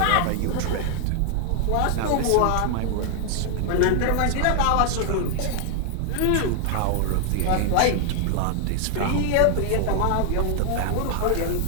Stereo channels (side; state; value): both; different; correlation 0.00